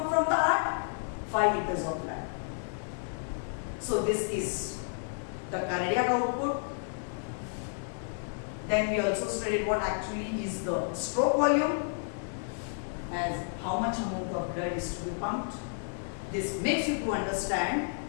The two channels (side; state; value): right; silent; digital silence